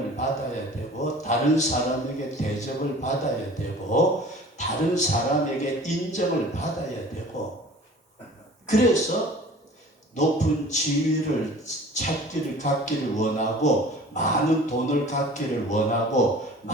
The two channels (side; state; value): both; normal; correlation 0.45